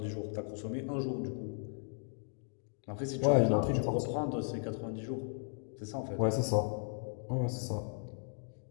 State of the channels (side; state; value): right; silent; digital silence